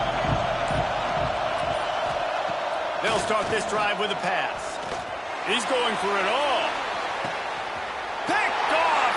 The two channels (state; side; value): identical; both; correlation 1.00